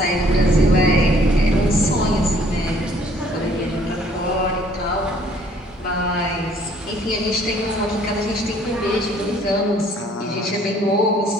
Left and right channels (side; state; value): both; normal; correlation 0.60